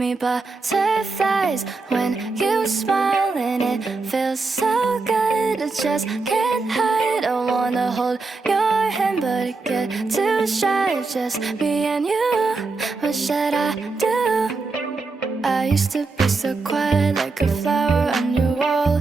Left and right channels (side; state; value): left; quieter; 3.9 dB